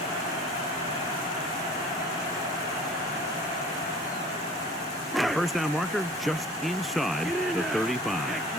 That first down marker just inside the 35.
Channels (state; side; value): normal; both; correlation 0.46